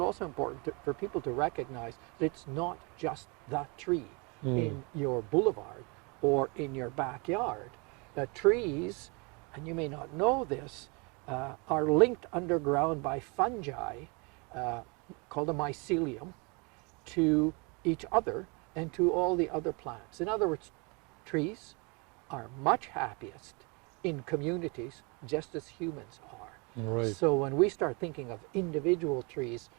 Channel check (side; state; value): left; quieter; 30.9 dB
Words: also important for people to recognize that it's not just the tree in your boulevard or in your backyard. Trees, and you may not know this, are linked underground by fungi called a mycelium to each other and to all the other plants. In other words, trees are much happiest in communities just as humans are. Right. So when we start thinking of individual trees,